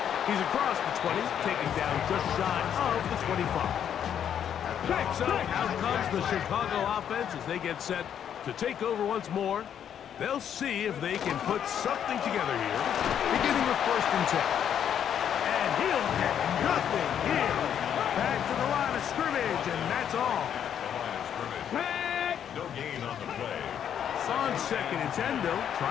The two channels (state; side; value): quieter; right; 9.1 dB